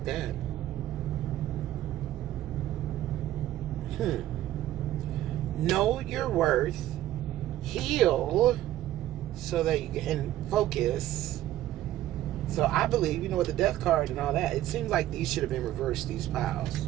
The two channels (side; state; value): left; quieter; 13.8 dB